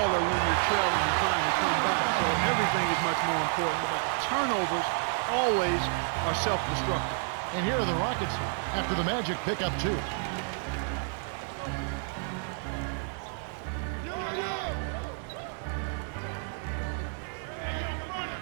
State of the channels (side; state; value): left; silent; 58 dB below the other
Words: when you're trailing and trying to come back, so everything is much more important. But turnovers always are self-destructive. And here are the Rockets after the Magic pick up 2.